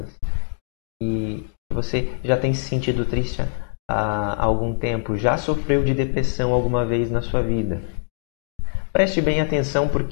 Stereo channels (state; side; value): silent; right; digital silence